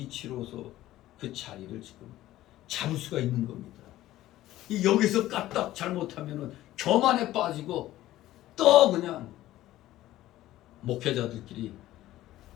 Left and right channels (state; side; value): quieter; right; 15.0 dB